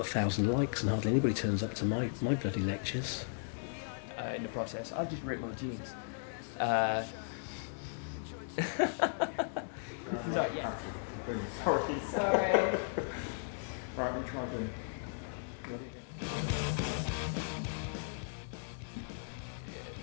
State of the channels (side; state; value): right; silent; digital silence